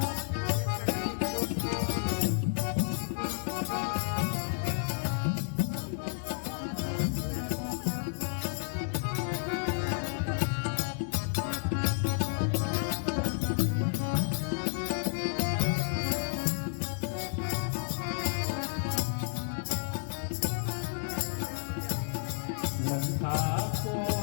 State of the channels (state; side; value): silent; right; digital silence